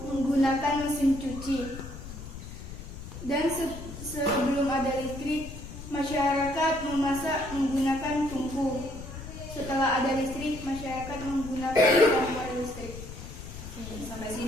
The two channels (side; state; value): left; noise; rumble, 11 dB below the sound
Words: mesin cuci. Dan sebelum ada listrik, masyarakat memasak menggunakan tungku. Setelah ada listrik, masyarakat menggunakan kompor listrik. Sampai